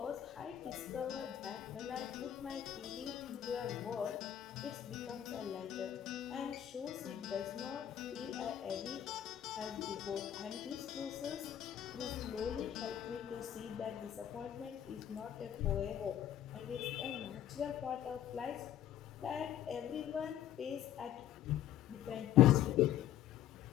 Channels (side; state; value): right; quieter; 11.2 dB